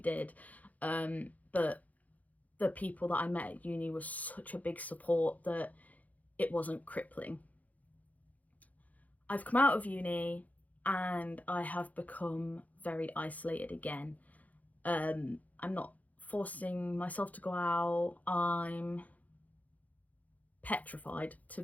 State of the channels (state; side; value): late; right; 0.076 ms